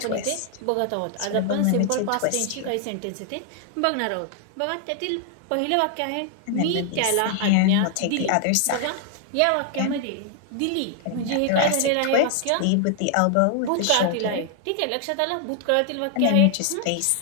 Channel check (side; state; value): both; different; correlation 0.00